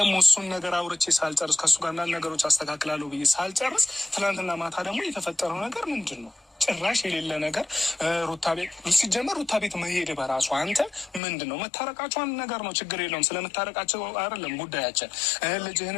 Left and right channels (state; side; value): drops out; right; at 11.2 s